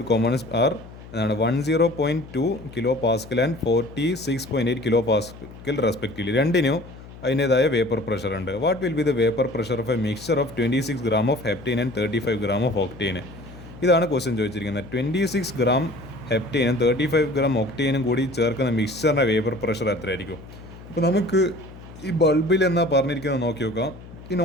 components are 10.2 kilopascal and 46.8 kilopascal respectively. രണ്ടിനും അതിൻ്റേതായ വേപ്പർ പ്രഷർ ഉണ്ട്. What will be the vapour pressure of A mixture of 26 gram of heptane and 35 gram of octane? ഇതാണ് question ചോദിച്ചിരിക്കുന്നത്. 26 gram ഹെപ്റ്റൈനും 35 gram ഒക്ടൈനും കൂടി ചേർക്കുന്ന മിക്സ്ചറിൻ്റെ vapour pressure എത്രയായിരിക്കും? അപ്പോൾ നമുക്ക് ഈ ബൾബിൽ എന്നാ പറഞ്ഞിരിക്കുന്നത് നോക്കി നോക്കാം. ഇൻ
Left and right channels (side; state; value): left; noise; hum, 17 dB below the sound